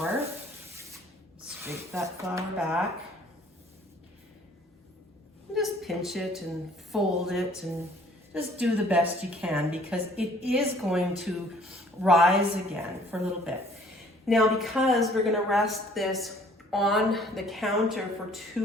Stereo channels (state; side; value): normal; both; correlation 0.57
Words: Scrape that flour back. And just pinch it and fold it and just do the best you can, because it is going to rise again for a little bit. Now, because we're gonna rest this on the counter for